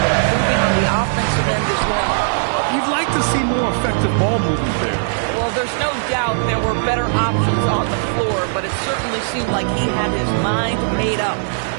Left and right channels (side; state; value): left; silent; 55 dB below the other